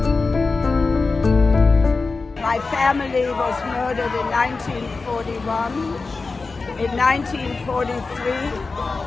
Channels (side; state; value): right; quieter; 4.0 dB